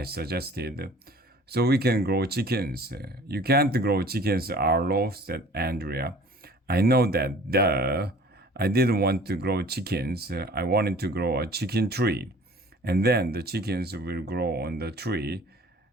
suggested, "so we can grow chickens." "You can't grow chickens, Arlo," said Andrea. "I know that, duh. I didn't want to grow chickens. I wanted to grow a chicken tree. And then the chickens will grow on the tree."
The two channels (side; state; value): both; normal; correlation 0.49